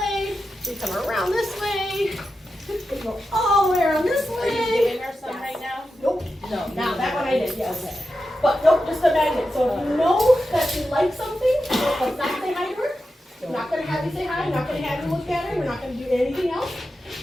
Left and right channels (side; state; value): both; normal; correlation 0.90